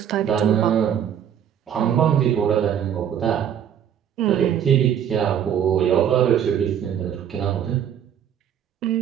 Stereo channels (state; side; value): quieter; left; 9.2 dB